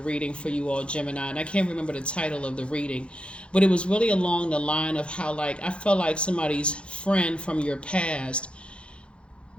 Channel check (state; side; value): late; right; 0.058 ms